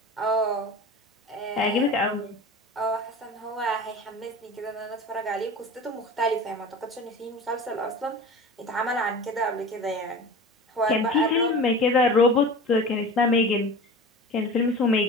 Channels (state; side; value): normal; both; correlation 0.35